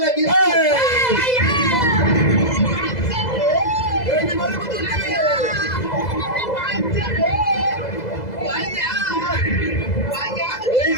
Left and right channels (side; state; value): right; late; 2.0 ms